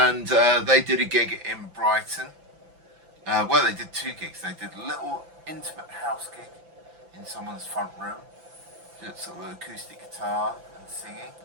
they did a gig in Brighton. Well, they did 2 gigs. They did a little intimate house gig in someone's front room, just sort of acoustic guitar and singing.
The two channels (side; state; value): left; late; 5.9 ms